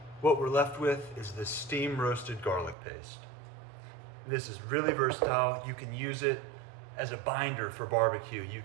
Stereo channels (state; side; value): drops out; left; at 2.8 s